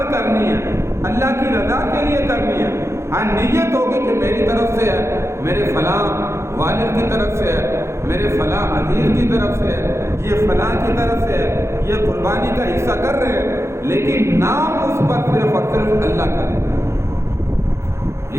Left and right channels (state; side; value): late; left; 0.13 ms